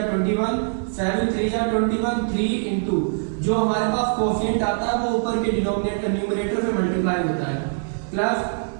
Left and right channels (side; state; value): left; silent; 58 dB below the other